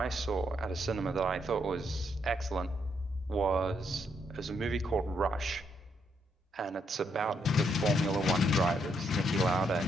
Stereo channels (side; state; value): both; normal; correlation 0.76